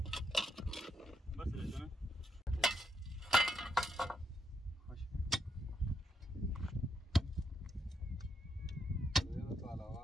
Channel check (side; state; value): both; normal; correlation 0.80